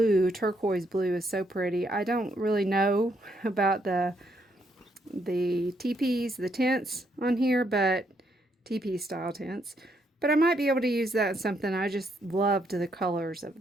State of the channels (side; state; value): both; normal; correlation 0.75